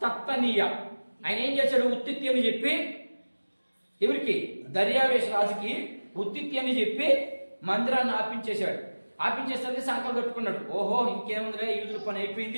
తత్తనీయ. ఆయన ఏం చేశాడు? ఉత్తిత్తి అని చెప్పి ఎవరికి? దర్యావేష్ రాజుకి ఉత్తిత్తి అని చెప్పి మందిరాన్ని ఆపించేశాడు. ఆపించేసరికి సంకల్పం పెట్టుకున్నాడు, ఓహో ఇంకేముందిలే యూదుల పని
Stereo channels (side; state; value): both; inverted; correlation -1.00